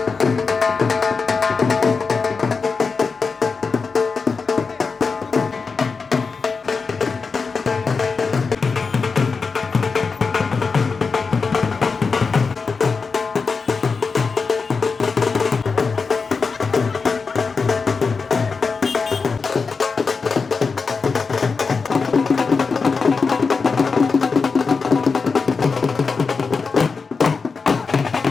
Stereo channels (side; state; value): right; quieter; 4.8 dB